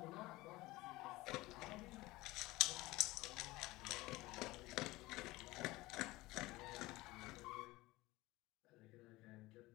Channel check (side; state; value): right; quieter; 19.8 dB